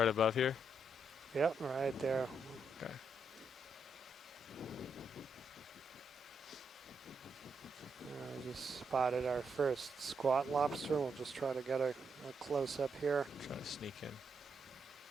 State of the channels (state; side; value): normal; both; correlation 0.79